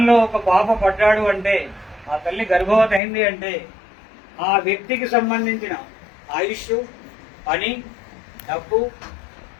ఒక పాప పడ్డాడు అంటే, ఆ తల్లి గర్భవతి అయింది అంటే, ఆ వ్యక్తికి సంబంధించిన ఆయుష్, పని, డబ్బు,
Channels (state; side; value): drops out; right; at 3.0 s